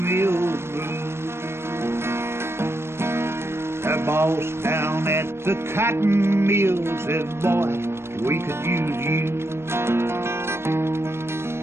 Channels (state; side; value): late; left; 0.12 ms